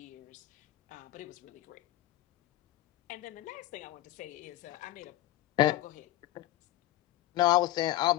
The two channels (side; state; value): right; quieter; 15.6 dB